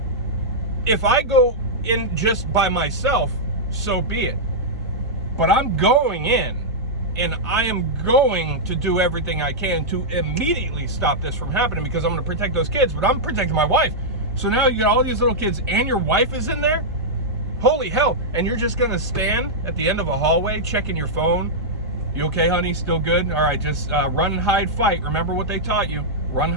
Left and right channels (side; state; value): both; normal; correlation -0.08